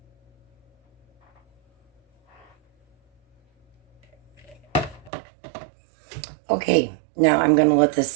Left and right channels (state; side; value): drops out; left; at 5.1 s